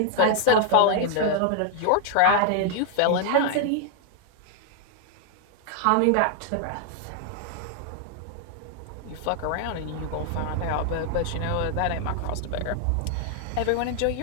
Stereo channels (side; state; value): both; different; correlation 0.00